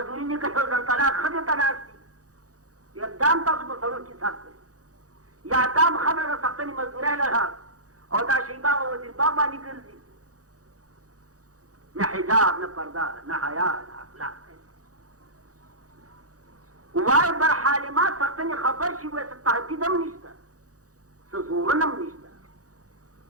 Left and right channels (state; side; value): late; left; 0.66 ms